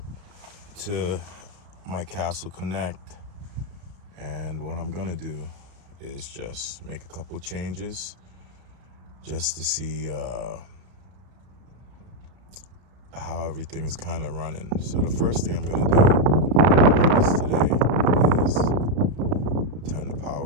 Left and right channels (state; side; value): late; left; 33 ms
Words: to my Castle Connect, and what I'm gonna do is just make a couple changes just to see how everything is kind of running. So the first thing I'm gonna do today is turn the